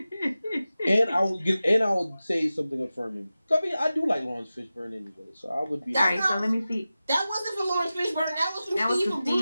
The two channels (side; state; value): both; inverted; correlation -0.95